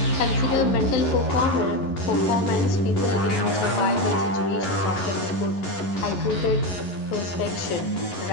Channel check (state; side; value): late; right; 11 ms